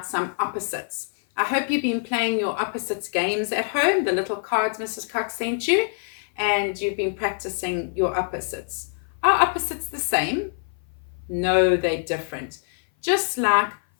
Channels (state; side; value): silent; right; 56 dB below the other